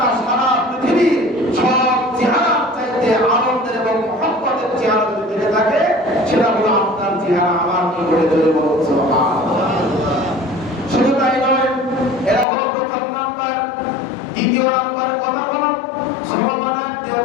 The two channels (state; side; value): drops out; right; at 12.5 s